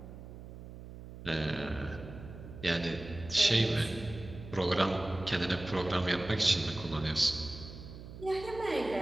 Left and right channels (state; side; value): noise; right; hum, 13 dB below the sound